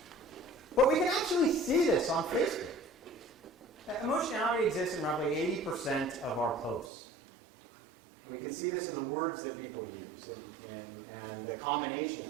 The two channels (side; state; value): left; drops out; at 6.9 s